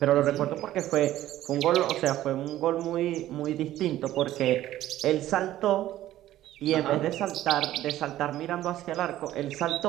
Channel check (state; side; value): quieter; left; 13.8 dB